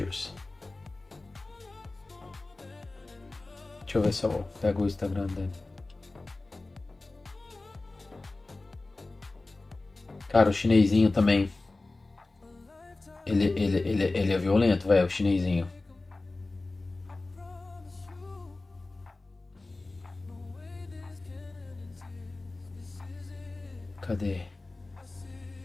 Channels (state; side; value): quieter; right; 3.2 dB